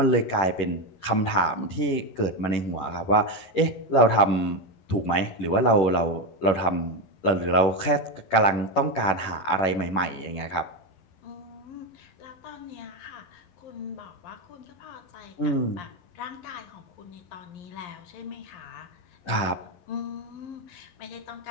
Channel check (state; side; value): late; right; 11 ms